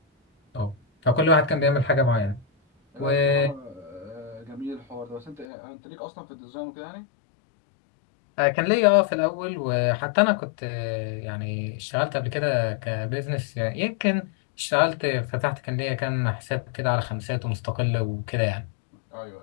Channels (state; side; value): drops out; right; at 5.5 s